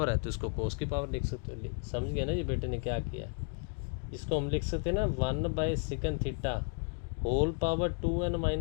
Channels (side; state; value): right; quieter; 39.3 dB